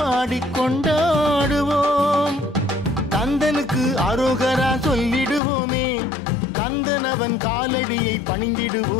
கந்தனுக்கு அரோகரா சொல்லிடுவோமே கந்தனவன் காலடியை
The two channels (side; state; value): right; drops out; at 5.4 s